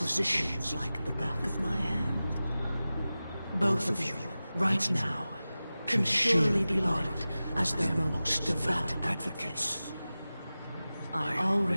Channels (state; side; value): inverted; both; correlation -0.96